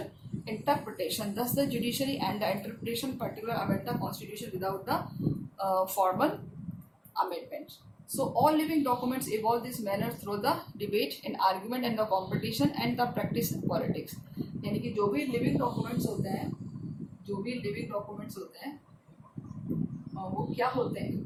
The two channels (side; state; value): both; identical; correlation 1.00